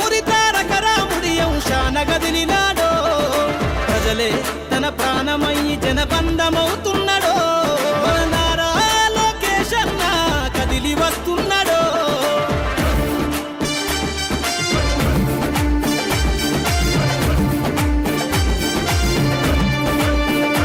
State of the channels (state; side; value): identical; both; correlation 1.00